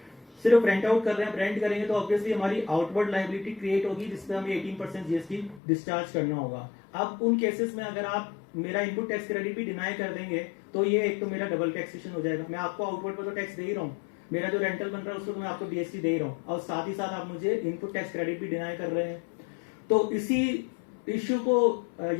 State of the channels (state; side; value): drops out; right; at 5.6 s